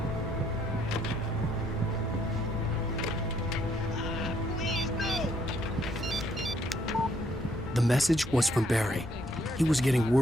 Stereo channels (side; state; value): both; normal; correlation 0.69